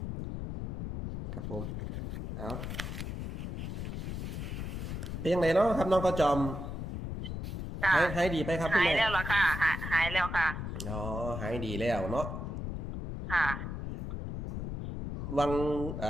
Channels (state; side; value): noise; left; rumble, 5 dB below the sound